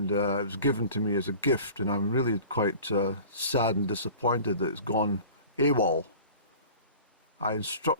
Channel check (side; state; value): both; inverted; correlation -0.42